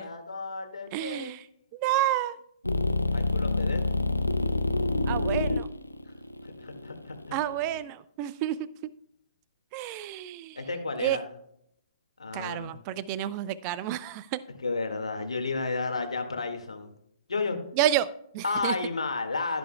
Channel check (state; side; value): inverted; both; correlation -0.54